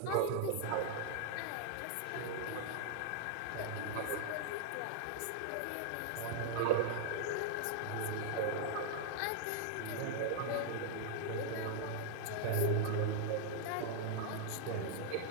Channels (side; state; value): both; different; correlation 0.00